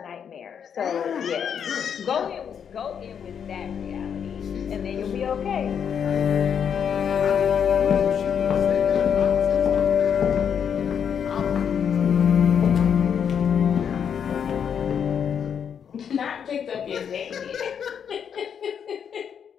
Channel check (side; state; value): right; quieter; 7.8 dB